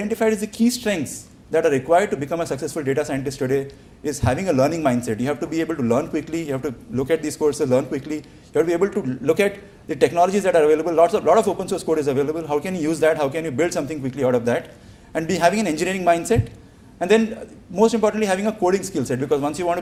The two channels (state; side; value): identical; both; correlation 1.00